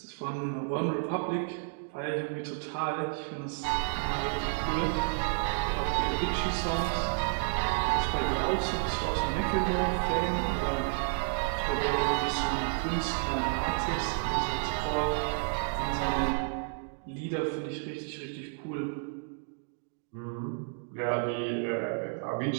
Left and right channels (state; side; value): silent; left; digital silence